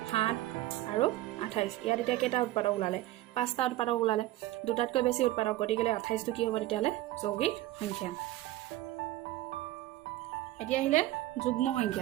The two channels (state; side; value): quieter; left; 15.7 dB